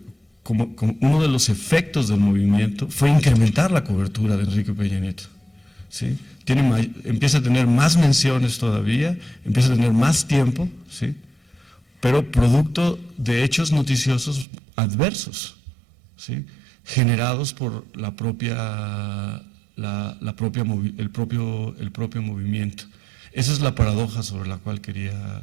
uno de los efectos del movimiento fue incrementar la cobertura de Enrique Peña Nieto, ¿sí? Empieza a tener más menciones todavía, empieza a tener más tiempo, ¿sí?, pero producto de hechos noticiosos adversos, ¿sí?, generados por el propio movimiento. Esa es la paradoja sobre la cual quería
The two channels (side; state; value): left; drops out; at 14.5 s